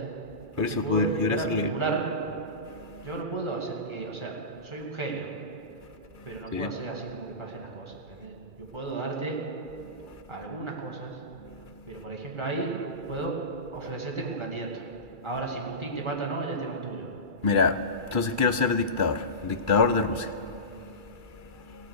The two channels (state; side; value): late; left; 2.3 ms